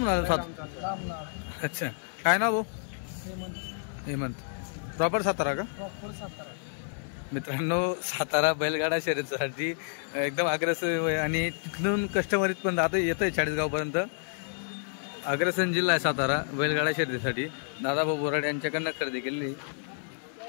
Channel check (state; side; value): silent; right; 58 dB below the other